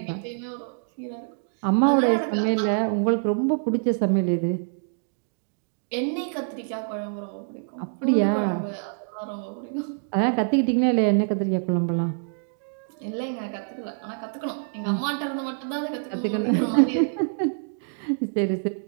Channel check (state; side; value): silent; left; digital silence